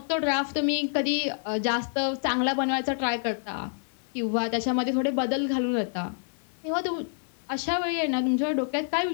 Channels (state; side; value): silent; right; digital silence